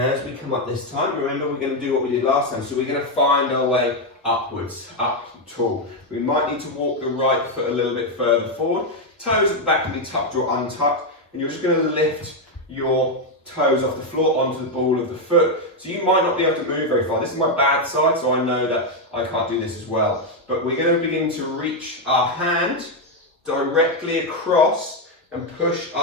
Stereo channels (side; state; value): both; normal; correlation 0.04